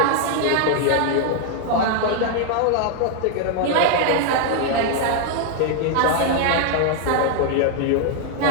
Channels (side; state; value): both; different; correlation 0.00